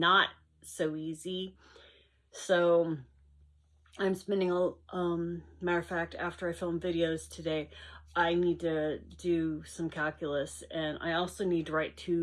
so easy. So I'm spending matter of fact, after I film videos today, I need to do some calculus, and I also need to write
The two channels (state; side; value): identical; both; correlation 1.00